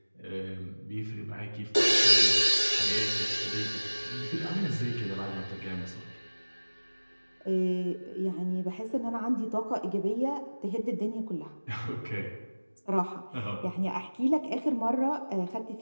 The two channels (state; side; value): inverted; both; correlation -1.00